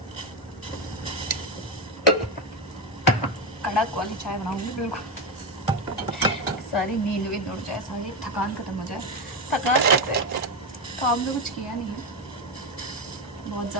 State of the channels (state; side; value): normal; both; correlation 0.11